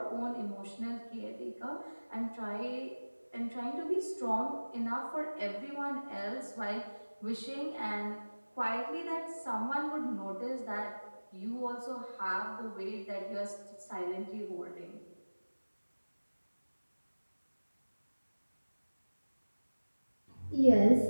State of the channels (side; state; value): both; inverted; correlation -1.00